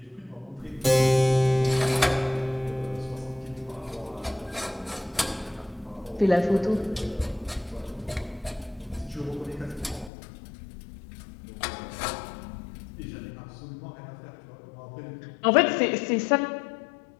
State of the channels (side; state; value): right; drops out; at 10.1 s